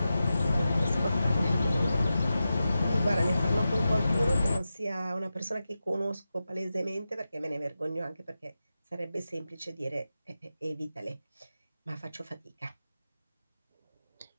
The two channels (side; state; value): both; inverted; correlation -0.92